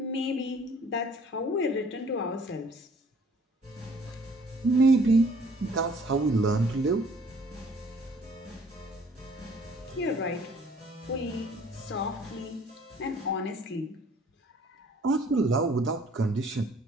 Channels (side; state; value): both; normal; correlation 0.56